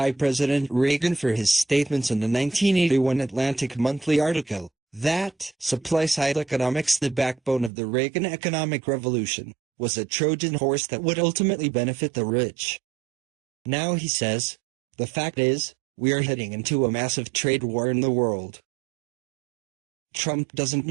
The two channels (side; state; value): left; drops out; at 7.7 s